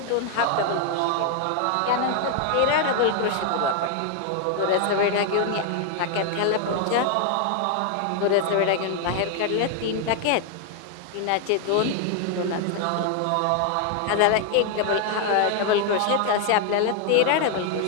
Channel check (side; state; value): both; different; correlation 0.00